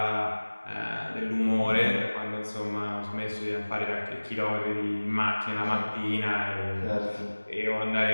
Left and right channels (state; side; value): inverted; both; correlation -1.00